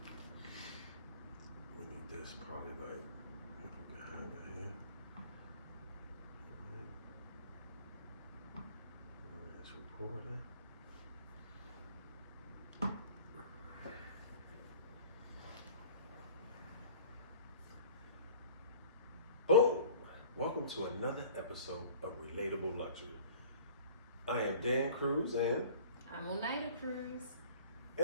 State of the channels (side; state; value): both; inverted; correlation -0.47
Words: We need this probably like, if we can have it here. It's recording. Boom! Welcome to another episode of Relatable Luxury. I am Dan Cruz, and I'm Oneida Cruz.